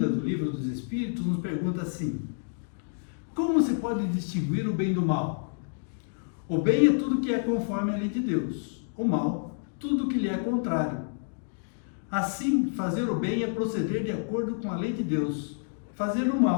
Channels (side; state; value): right; silent; digital silence